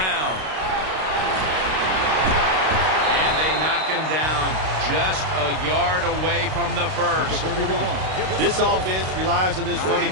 And they knock him down just a yard away from the first. This offense relies on this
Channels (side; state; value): left; late; 32 ms